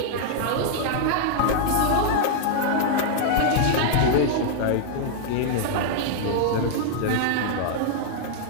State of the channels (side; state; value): both; different; correlation -0.01